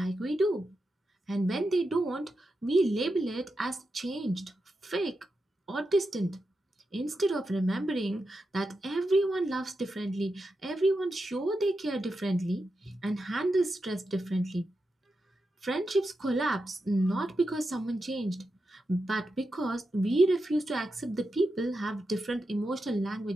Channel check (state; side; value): normal; both; correlation 0.88